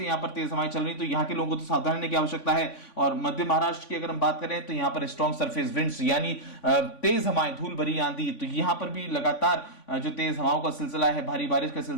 यहां पर तेज हवाएं चल रही हैं। तो यहां के लोगों को तो सावधानी लेने की आवश्यकता है। और मध्य महाराष्ट्र की अगर हम बात करें, तो यहां पर स्ट्रॉन्ग सरफेस विंड्स, यानी तेज हवाएं, धूल भरी आंधी, तो यहां पर भी लगातार जो तेज हवाओं का सिलसिला है, भारी बारिश का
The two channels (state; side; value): late; right; 3.5 ms